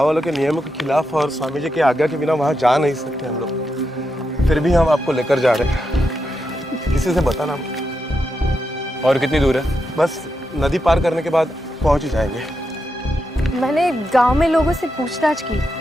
वालों के नियमों के खिलाफ और स्वामी जी की आज्ञा के बिना वहां जा नहीं सकते हम लोग, फिर भी हम आपको लेकर जा रहे हैं। किसी से बताना। और कितनी दूर है? बस नदी पार करने के बाद पहुंच ही जाएंगे। मैंने गांव में लोगों से पूछताछ की,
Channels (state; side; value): normal; both; correlation 0.85